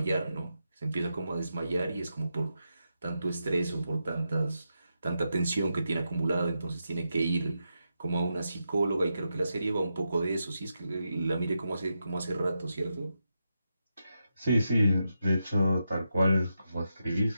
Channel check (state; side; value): inverted; both; correlation -0.86